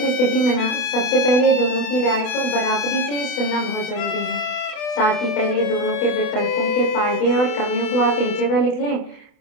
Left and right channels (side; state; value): right; late; 29 ms